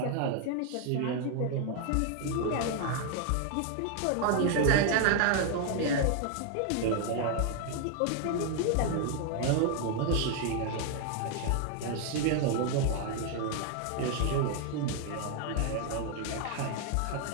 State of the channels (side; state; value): both; different; correlation 0.00